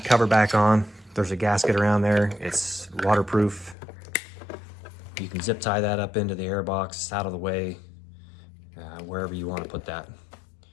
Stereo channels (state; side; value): drops out; right; at 3.8 s